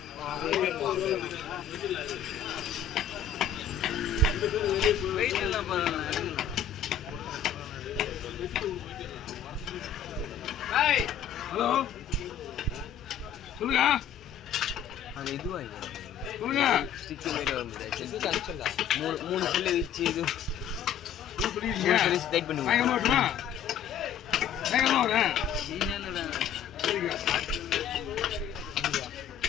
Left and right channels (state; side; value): quieter; right; 8.4 dB